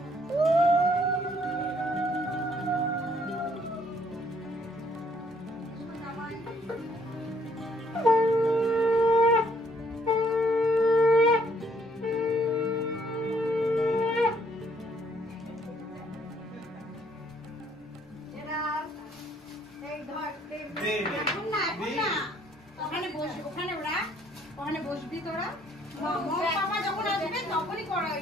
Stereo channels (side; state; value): both; normal; correlation 0.66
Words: ওখানে বসবি তোরা, মামা যখন আসবে তখনই করাই